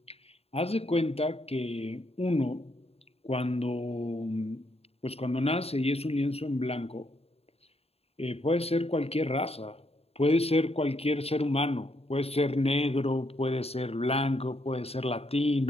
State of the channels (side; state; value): right; late; 0.29 ms